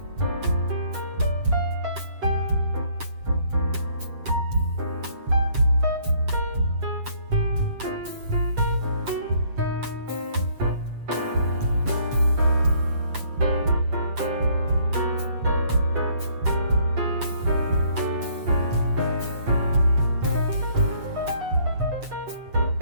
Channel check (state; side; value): late; left; 7.7 ms